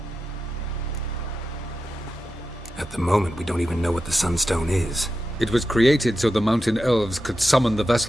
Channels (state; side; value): normal; both; correlation 0.90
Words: At the moment, we don't even know what the Sunstone is. It was created so the mountain elves could summon the